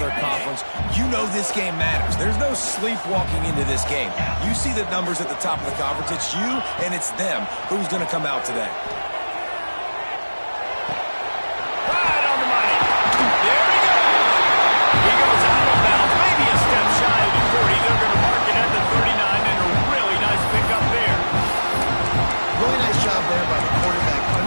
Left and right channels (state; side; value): inverted; both; correlation -1.00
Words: conference. You know this game matters. There's no sleepwalking into this game. You see the numbers at the top of the conference. It's you and it's them. Who's going to come out today? Right on the money. There he goes. He goes out of bounds, maybe a step shy of the 40. They're going to mark it at the 39, and a really nice pickup there. Really nice job there by the quarterback,